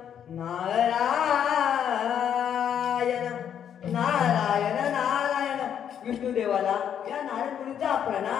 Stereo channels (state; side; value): quieter; right; 8.9 dB